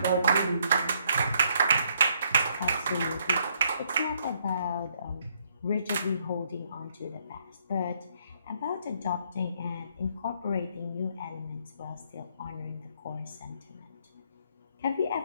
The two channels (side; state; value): both; inverted; correlation -0.71